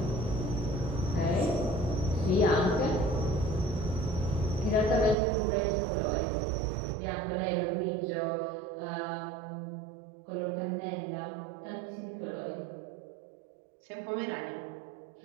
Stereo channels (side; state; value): left; drops out; at 5.2 s